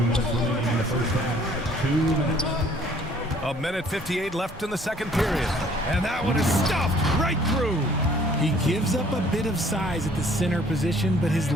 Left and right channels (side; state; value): both; normal; correlation 0.57